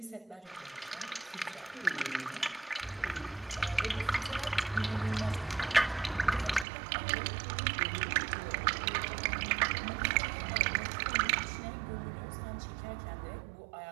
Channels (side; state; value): left; drops out; at 6.7 s